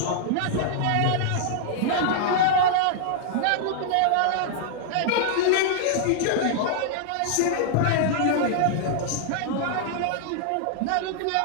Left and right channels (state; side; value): different; both; correlation -0.01